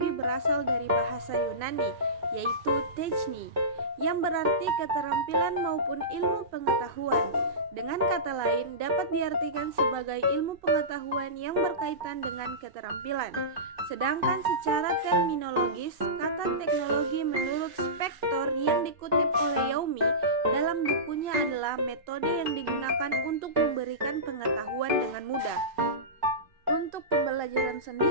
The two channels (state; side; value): late; left; 2.6 ms